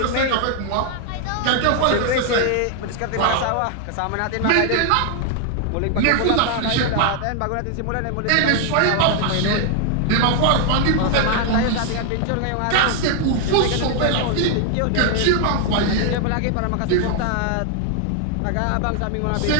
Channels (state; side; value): different; both; correlation 0.00